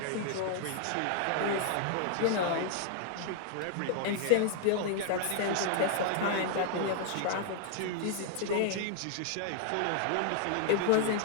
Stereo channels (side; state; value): both; different; correlation 0.00